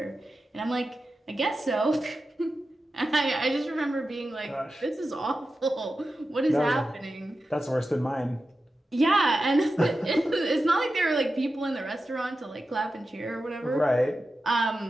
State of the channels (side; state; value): both; normal; correlation 0.92